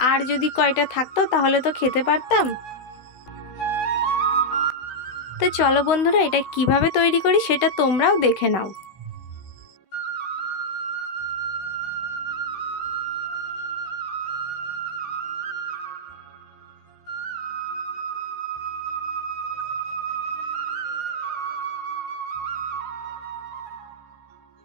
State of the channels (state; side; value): late; right; 16 ms